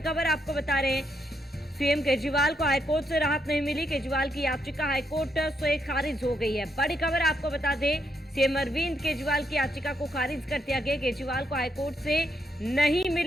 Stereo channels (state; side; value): normal; both; correlation 0.78